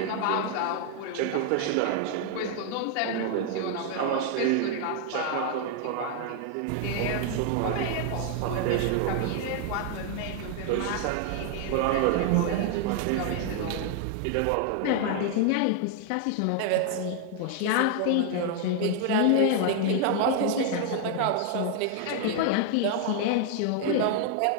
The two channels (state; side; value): different; both; correlation 0.00